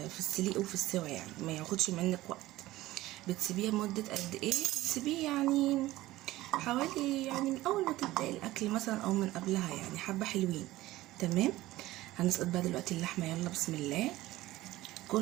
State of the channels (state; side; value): quieter; left; 17.1 dB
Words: السليق وفي السوا، يعني ما ياخدش منك وقت. بتسيبيه مده قد ايه؟ بتسيبيه يعني حوالي يعني من اول ما تبدأ الاكل مثلا او من قبلها، يعني حبة حلوين. تمام. هنسقط بقى دلوقتي اللحمة. يلا بسم الله،